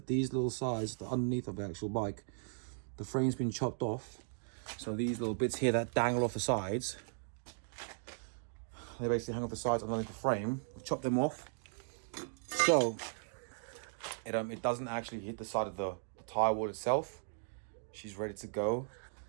these little sides, the underneath of the actual bike, the frame's been chopped off. So these little bits here that dangle off the sides, they basically hang off the sides underneath the frame. We chop them off, so it doesn't actually hit the side of the tire wall itself. She's ready to go,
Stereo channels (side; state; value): left; silent; digital silence